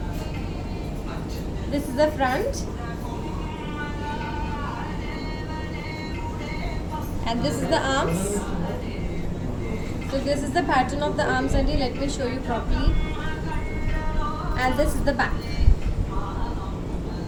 this is the front, and this is the arms. So this is the pattern of the arms, and let me show you properly. And this is the back.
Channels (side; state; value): both; identical; correlation 1.00